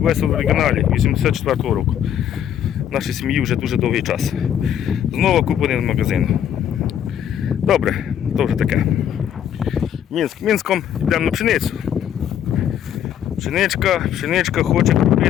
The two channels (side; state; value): right; quieter; 9.7 dB